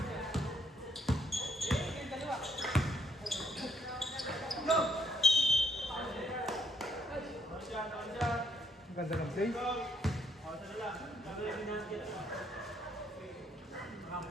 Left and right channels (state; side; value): normal; both; correlation 0.71